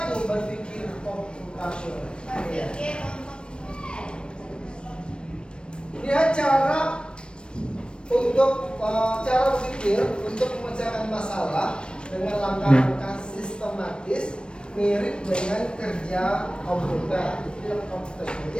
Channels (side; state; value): right; late; 0.055 ms